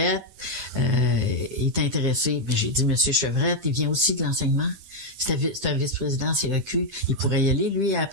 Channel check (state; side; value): late; left; 10 ms